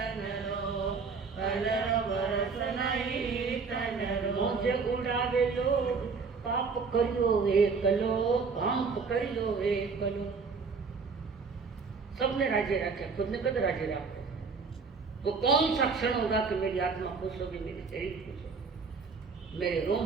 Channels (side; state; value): left; quieter; 4.9 dB